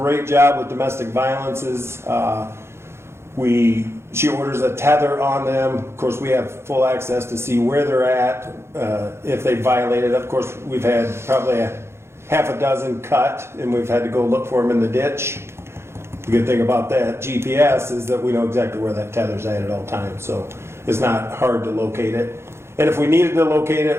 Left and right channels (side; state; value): left; late; 0.12 ms